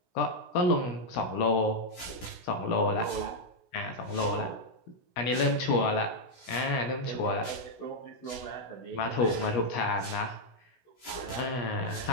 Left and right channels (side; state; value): right; late; 16 ms